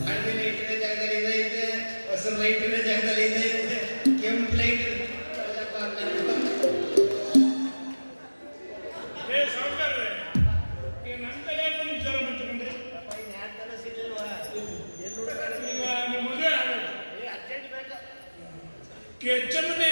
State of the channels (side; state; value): both; inverted; correlation -1.00